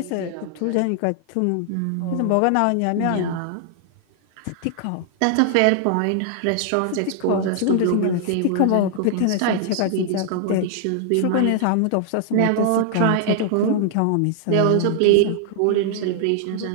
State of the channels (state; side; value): different; both; correlation -0.01